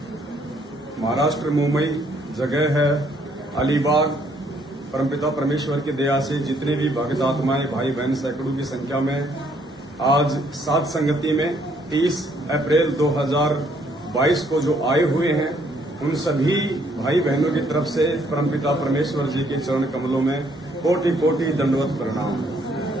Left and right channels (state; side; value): normal; both; correlation 0.67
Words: महाराष्ट्र मुंबई जगह है अलीबाग। परमपिता परमेश्वर की दया से जितने भी भक्त आत्माएं भाई बहन सैकड़ों की संख्या में आज सात संगति में 30 अप्रैल 2022 को जो आए हुए हैं, उन सभी भाई बहनों की तरफ से परमपिता परमेश्वर जी के चरण कमलों में कोटि कोटि दंडवत प्रणाम।